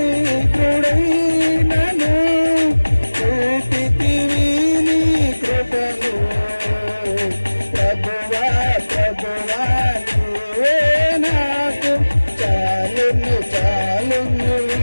చూపితివి నీ కృపను. ప్రభువా ప్రభువా నీవే నాకు చాలును చాలును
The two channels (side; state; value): both; inverted; correlation -1.00